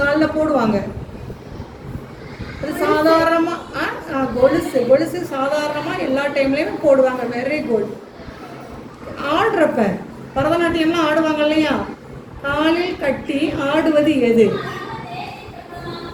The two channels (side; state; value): both; identical; correlation 1.00